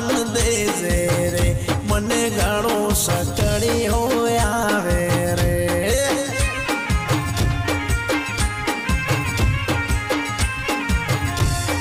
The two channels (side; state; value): both; identical; correlation 1.00